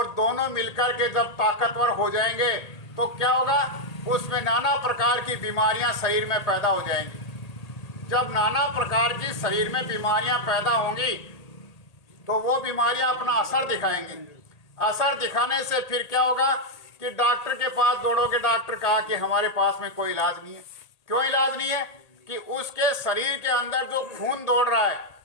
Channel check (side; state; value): right; late; 1.8 ms